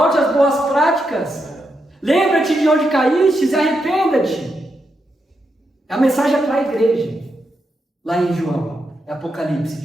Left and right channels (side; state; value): both; normal; correlation 0.84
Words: às boas práticas. Lembra-te de onde caíste e arrependa-te. A mensagem é para a igreja. Lá em João, Apocalipse